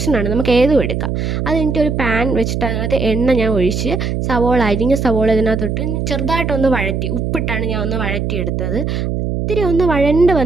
നമുക്ക് ഏതും എടുക്കാം. അത് കഴിഞ്ഞിട്ട് ഒരു പാൻ വെച്ചിട്ട് അതിനകത്ത് എണ്ണ ഞാൻ ഒഴിച്ച് അരിഞ്ഞ സവോള ഇതിനകത്തോട്ട് ചെറുതായിട്ടൊന്ന് വഴറ്റി, ഉപ്പിട്ടാണ് ഞാൻ ഒന്ന് വഴറ്റിയെടുത്തത്. ഇത്തിരി ഒന്ന് വഴണ്ട്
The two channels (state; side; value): noise; right; hum, 1 dB below the sound